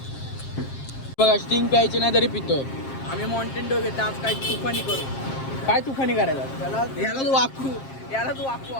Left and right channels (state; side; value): late; right; 7.5 ms